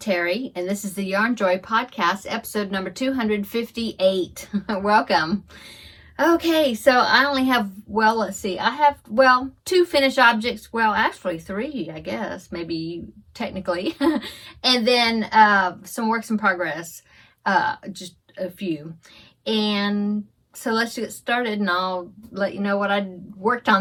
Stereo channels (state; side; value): identical; both; correlation 1.00